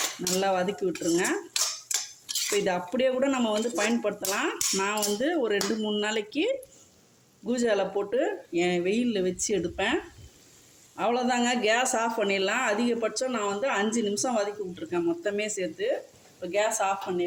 நல்லா வதக்கி விட்டுருங்க. இப்போ இதை அப்படியே கூட நம்ம வந்து பயன்படுத்தலாம். நான் வந்து ஒரு 2-3 நாளைக்கு கூஜாவில் போட்டு என் வெயிலில் வச்சு எடுப்பேன். அவ்வளோதாங்க, கேஸ் ஆஃப் பண்ணிடலாம். அதிகபட்சம் நான் வந்து 5 நிமிஷம் வதக்கி விட்ருக்கேன் மொத்தமே சேர்த்து. இப்போ கேஸ் ஆஃப்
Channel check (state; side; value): identical; both; correlation 1.00